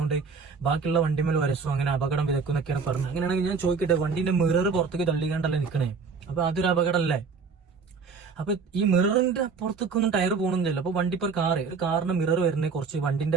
ബാക്കിയുള്ള വണ്ടിമേൽ വരസും, അങ്ങനെ അപകടം വിതക്കുന്നൊക്കെയാണ് പറഞ്ഞത്. അങ്ങനെയാണെങ്കിൽ ഞാൻ ചോദിക്കട്ടെ, വണ്ടിന്റെ മിറർ പുറത്തേക്ക് തള്ളിക്കാണ്ടല്ലേ നിൽക്കണേ? അപ്പൊ അതൊരു അപകടമല്ലേ? അപ്പൊ ഈ മിററിന്റെ പുറത്തേക്കൊന്നും ടയർ പോകണമെന്നില്ല. അപ്പൊ വണ്ടി ഇപ്പൊ ഒരു കാറിന്റെ മിറർ വരുന്നത് കുറച്ച്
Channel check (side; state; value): left; quieter; 5.2 dB